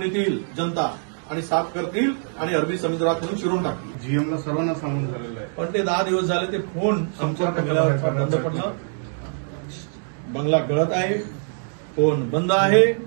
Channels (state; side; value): silent; left; 56 dB below the other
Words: येतील जनता आणि साफ करतील आणि अरबी समुद्रात नेऊन शिरून टाकतील. जीएमला सर्वांना सांगून झालेलं आहे, पण ते 10 दिवस झाले ते फोन संपर्क केल्यावर बंद पडलं. बंगला गळत आहे, फोन बंद आहे